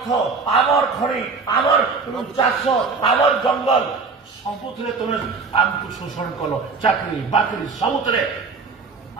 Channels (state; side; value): quieter; left; 4.6 dB